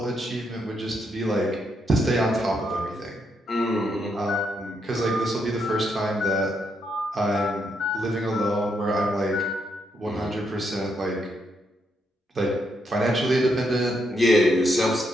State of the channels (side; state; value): both; normal; correlation 0.78